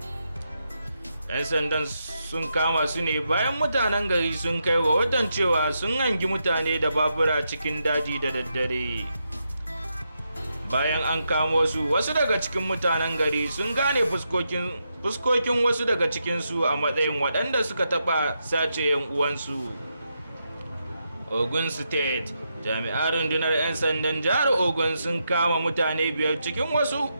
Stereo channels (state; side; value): inverted; both; correlation -0.83